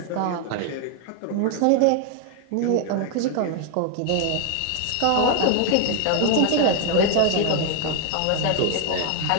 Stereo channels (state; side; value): different; both; correlation 0.01